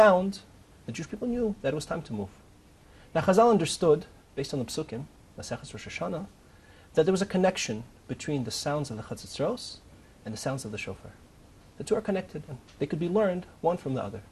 the Jewish people knew that it was time to move. Now Chazal understood, based on the Psukim, Masechus Rosh Hashanah, that there was a connection between the sounds of the chatzitzros and the sounds of the shofar. The two are connected, and they could be learned one from the other.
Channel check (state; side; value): identical; both; correlation 1.00